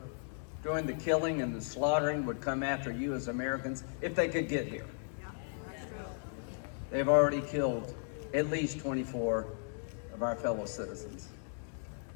doing the killing and the slaughtering would come after you as Americans if they could get here. They've already killed at least 24 of our fellow citizens.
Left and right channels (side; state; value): right; silent; 54 dB below the other